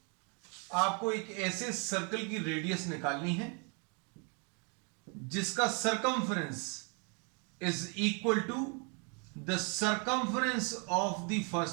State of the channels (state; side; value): quieter; left; 35.8 dB